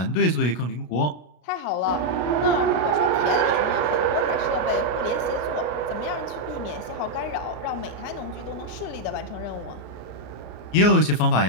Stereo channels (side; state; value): right; late; 33 ms